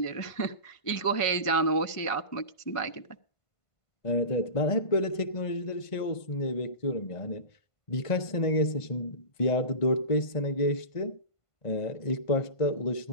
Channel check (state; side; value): late; right; 1.5 ms